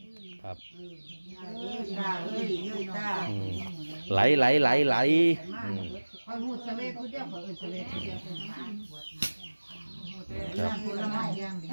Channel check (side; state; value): both; inverted; correlation -1.00